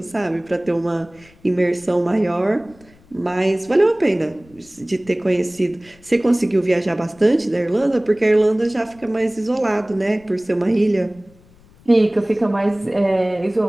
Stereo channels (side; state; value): left; noise; rumble, 28 dB below the sound